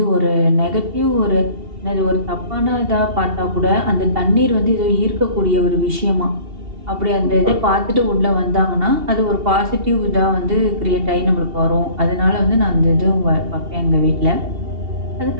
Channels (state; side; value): late; left; 2.8 ms